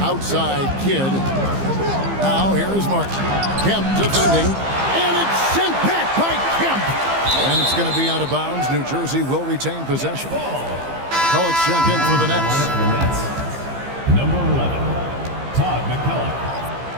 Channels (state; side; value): late; left; 15 ms